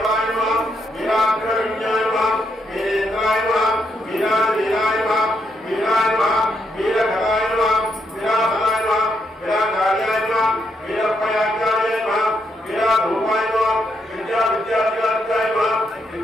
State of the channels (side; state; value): both; normal; correlation 0.78